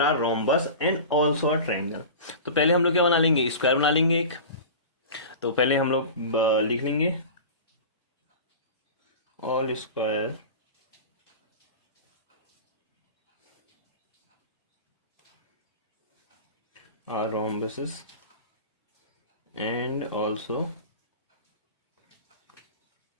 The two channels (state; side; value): inverted; both; correlation -0.33